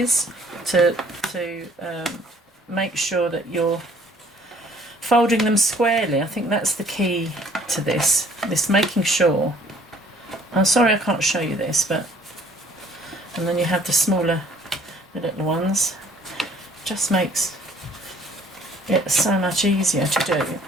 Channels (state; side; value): normal; both; correlation 0.58